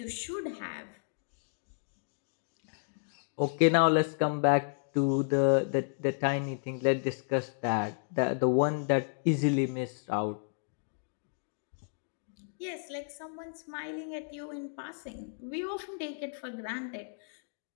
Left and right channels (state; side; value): silent; right; digital silence